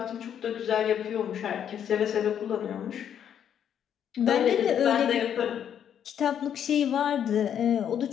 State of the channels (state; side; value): quieter; right; 9.1 dB